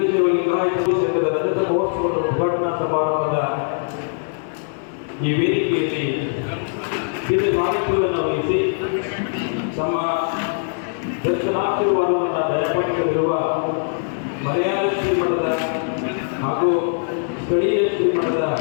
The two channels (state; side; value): silent; right; 65 dB below the other